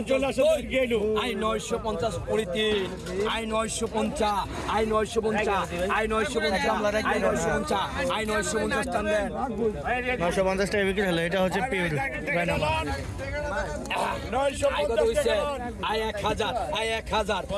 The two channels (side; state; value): both; identical; correlation 1.00